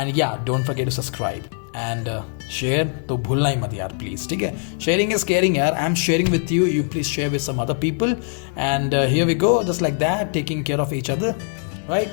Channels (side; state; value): right; silent; 57 dB below the other